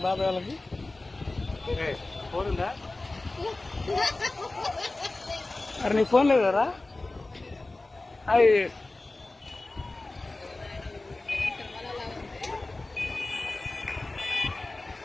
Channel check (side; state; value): right; quieter; 3.1 dB